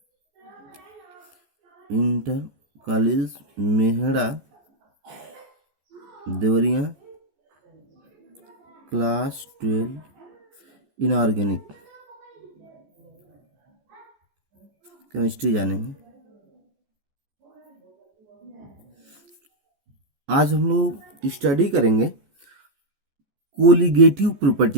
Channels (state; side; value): late; left; 14 ms